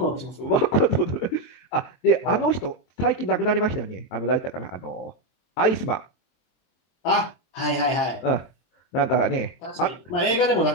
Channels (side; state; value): right; late; 23 ms